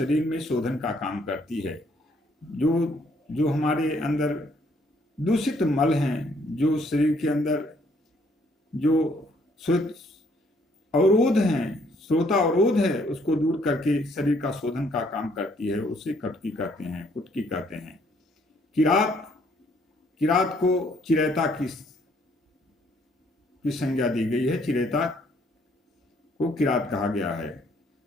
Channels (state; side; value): normal; both; correlation 0.66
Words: में शोधन का काम करती है। जो हमारे अंदर दूषित मल हैं, जो शरीर के अंदर जो अवरोध हैं, श्रोता अवरोध है, उसको दूर करके शरीर का शोधन का काम करती है। उसे कटकी कहते हैं, कुटकी कहते हैं। किरात को चिरैता की संज्ञा दी गई है। चिरैता को किरात कहा गया है।